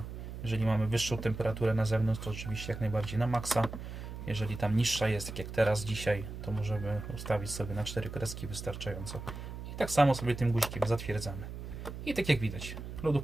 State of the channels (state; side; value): noise; right; hum, 9 dB below the sound